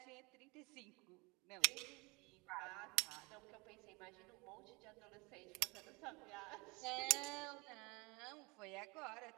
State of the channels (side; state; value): left; quieter; 26.8 dB